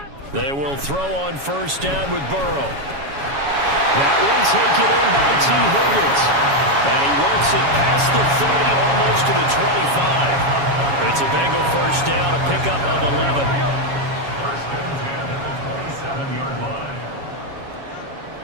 They will throw on first down with Burrow. That one taken in by T. Higgins. And he works it past the 30, almost to the 25. It's a Bengal first down, a pickup of 11.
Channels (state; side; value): late; left; 7.2 ms